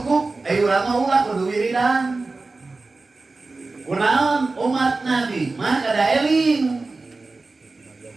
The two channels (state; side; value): quieter; left; 3.6 dB